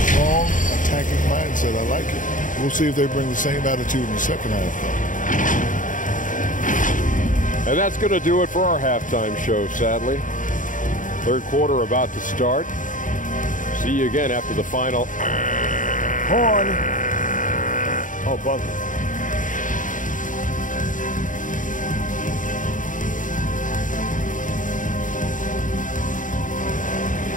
strong attacking mindset. I like it. We'll see if they bring the same attitude in the second half, though. And that's going to do it for our halftime show, sadly. Third quarter about to start. See you again after the final. Horn. Oh, buzzer.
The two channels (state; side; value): late; right; 0.38 ms